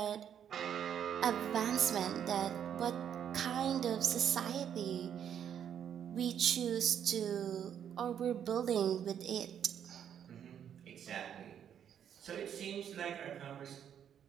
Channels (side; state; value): left; quieter; 9.0 dB